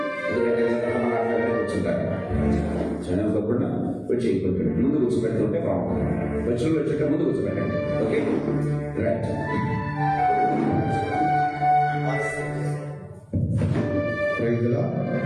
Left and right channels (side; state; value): both; identical; correlation 1.00